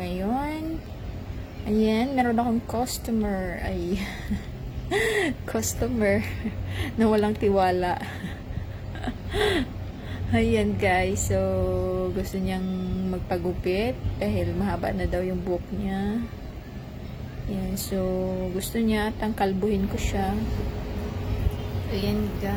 ngayon. Ayan, meron akong customer. Ay, customer na walang tiwala. Ayan guys. So, gusto niyang magpagupit dahil mahaba na daw yung buhok niya. Ayan, so gusto niya kalbuhin ko siya. Ayan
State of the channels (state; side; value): identical; both; correlation 1.00